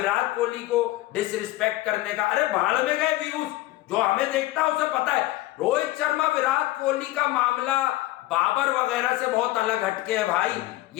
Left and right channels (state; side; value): quieter; right; 17.5 dB